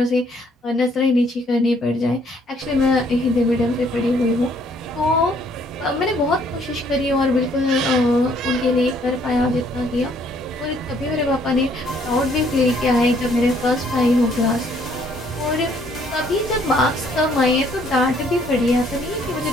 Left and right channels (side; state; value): both; normal; correlation 0.64